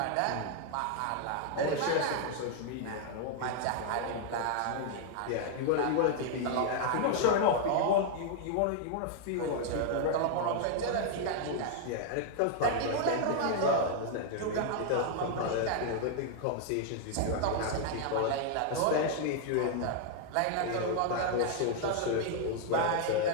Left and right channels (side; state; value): both; different; correlation 0.00